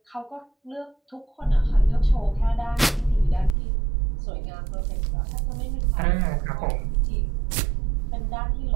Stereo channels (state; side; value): drops out; left; at 3.6 s